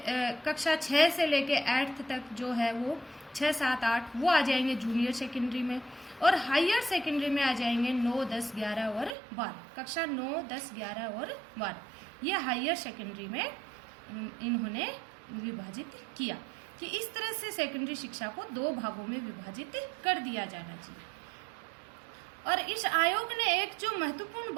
कक्षा 6 से लेके 8th तक जो है वो 6, 7, 8 वो आ जाएंगे जूनियर सेकेंडरी में, और हायर सेकेंडरी में आ जाएंगे 9, 10, 11 और 12। कक्षा 9, 10, 11 और 12 ये हायर सेकेंडरी में इन्होंने विभाजित किया कि इस तरह से सेकेंडरी शिक्षा को 2 भागों में विभाजित कर दिया जाना चाहिए। और इस आयोग ने एक जो महत्वपूर्ण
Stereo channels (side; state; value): left; drops out; at 9.2 s